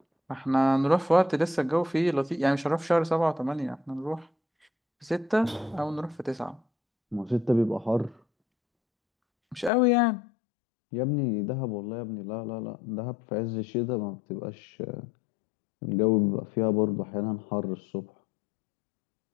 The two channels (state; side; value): drops out; right; at 9.7 s